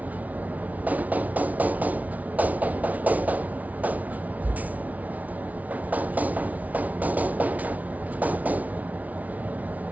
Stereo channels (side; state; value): left; late; 0.072 ms